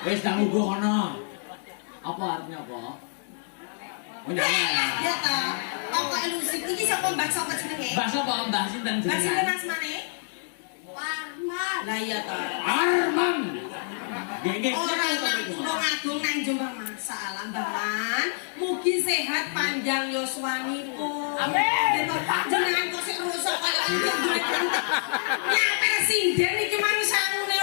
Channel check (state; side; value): silent; right; digital silence